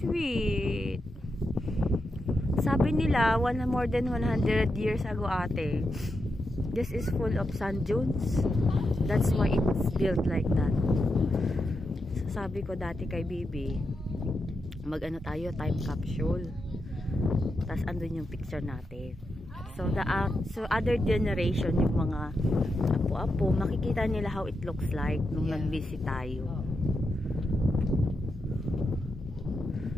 Sabi nila, more than 100 years ago, ate, this is full of sand dunes. That's why it's built like that. So, sabi ko dati kay Bibi, mag-ano tayo, time capsule. Tapos andun yung picture natin. So other generation, yung mga apo-apo, makikita nila how it looks like nung nag-visit tayo.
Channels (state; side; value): normal; both; correlation 0.86